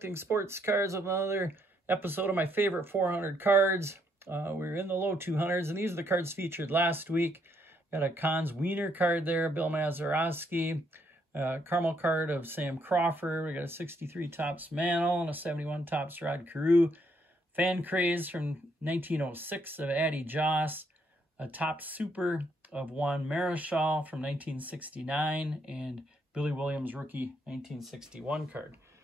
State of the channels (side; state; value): both; normal; correlation 0.72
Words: sports cards with another episode of my favorite 400 cards. We're in the low 200s, and these are the cards featured last week. Got a Cons Wiener card there, Bill Mazeroski. Caramel card of Sam Crawford. We got a 63 Topps Mantle and a 71 Topps Rod Carew. Fan Craze from 1906 of Addie Joss. A Topps Super of Juan Marichal from 1969, and Billy Williams rookie 1961 card.